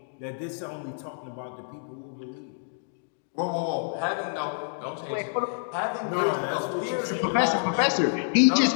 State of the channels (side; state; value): right; silent; digital silence